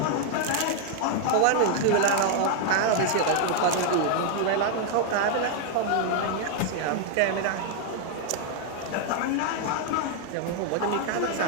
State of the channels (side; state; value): both; different; correlation 0.00